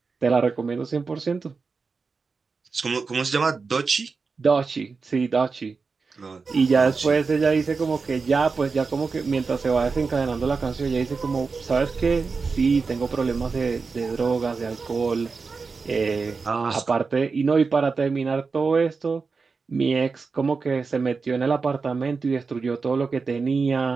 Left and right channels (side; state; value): left; quieter; 4.7 dB